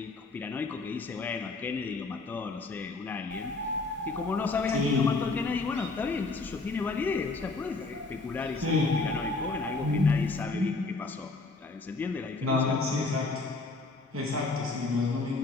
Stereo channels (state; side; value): quieter; right; 3.6 dB